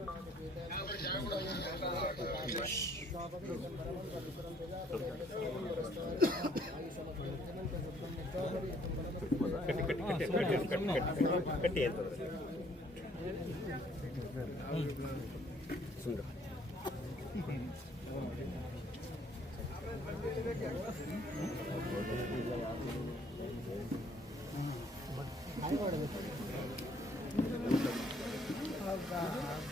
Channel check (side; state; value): both; normal; correlation 0.63